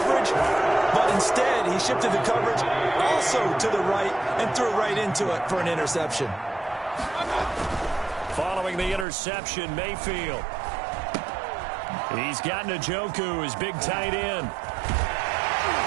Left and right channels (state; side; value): drops out; left; at 9.1 s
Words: but instead he shifted the coverage also to the right and threw right into it for an interception. Following the interception, Mayfield. He's got Njoku, his big tight end.